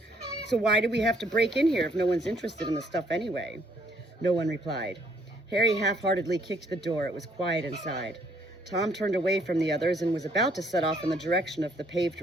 So why do we have to break in here if no one's interested in the stuff anyway? No one replied. Harry half-heartedly kicked the door. It was quiet inside. Tom turned away from the others and was about to set off in the direction of the paved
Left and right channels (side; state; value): both; normal; correlation 0.66